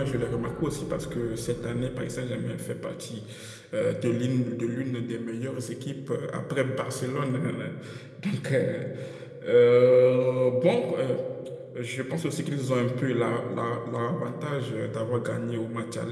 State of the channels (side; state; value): both; identical; correlation 1.00